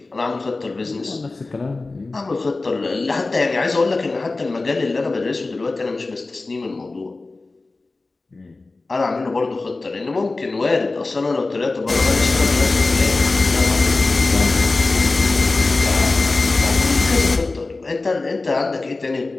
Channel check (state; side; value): quieter; right; 3.4 dB